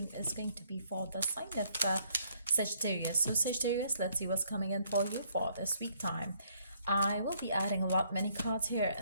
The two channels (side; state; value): both; inverted; correlation -0.66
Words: is going to be for the sign of Sagittarius. So Sagittarius, let's see what's coming in for you for this week time. I will be adding many cards here